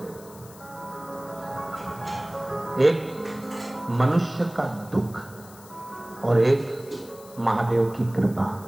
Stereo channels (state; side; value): noise; left; hiss, 21 dB below the sound